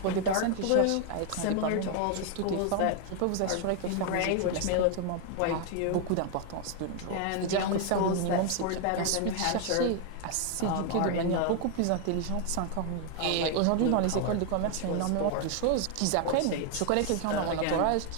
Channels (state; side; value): different; both; correlation 0.01